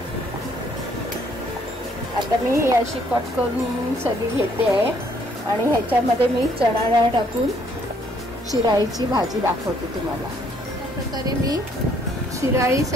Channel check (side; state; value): both; normal; correlation 0.66